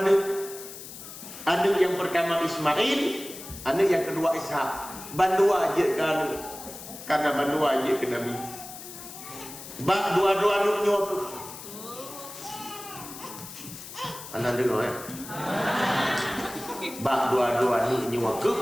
anak yang pertama Ismail, anak yang kedua Ishak. Bandua aja kan karena bandua aja ke Nabi. Bak dua-dua nuknya tu. Anda dengar ya? Bak dua-dua nuknya ke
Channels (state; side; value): noise; left; hiss, 13 dB below the sound